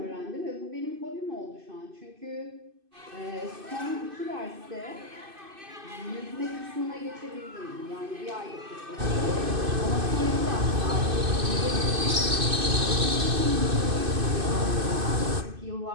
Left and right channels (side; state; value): left; late; 2.5 ms